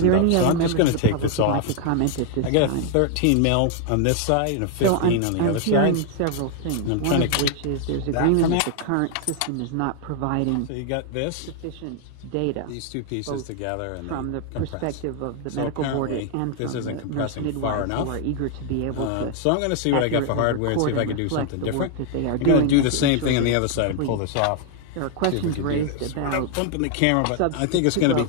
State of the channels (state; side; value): different; both; correlation 0.00